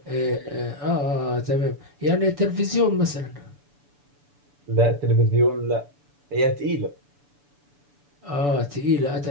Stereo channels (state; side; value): late; left; 6.9 ms